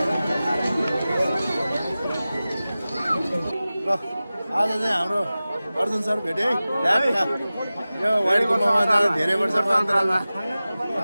ल आज चाहिँ हाम्रो अर्जुन सर भेटे है। यो व्हाइट गुम्बामा जाँदा धेरै वर्षको अन्तरालमा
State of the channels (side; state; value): both; inverted; correlation -0.97